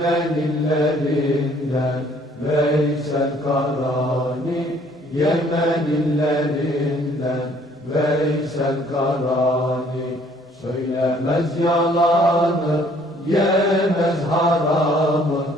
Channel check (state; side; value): normal; both; correlation 0.60